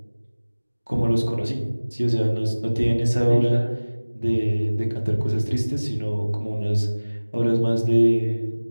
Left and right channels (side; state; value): both; inverted; correlation -1.00